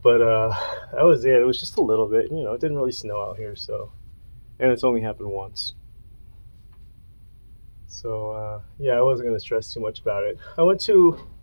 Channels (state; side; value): inverted; both; correlation -1.00